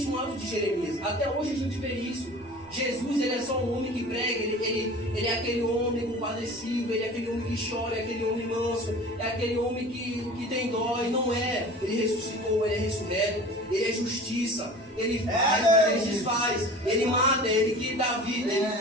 um ato de Jeremias. Até hoje a gente vê isso. Jesus, ele é só um homem que prega, ele é aquele homem compadecido, ele é aquele homem que chora, é aquele homem manso, é aquele homem que tem dó, e não é. Ele ressuscitou, ele é ressurreto, ele é justiça, ele faz, mas ele desfaz, ele mata, é ele que dá vida, ele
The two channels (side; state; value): both; normal; correlation 0.40